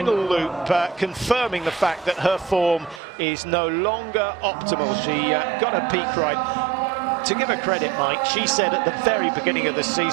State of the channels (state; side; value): drops out; left; at 3.0 s